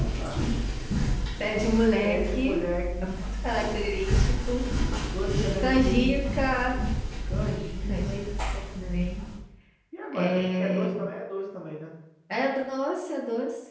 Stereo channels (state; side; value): identical; both; correlation 1.00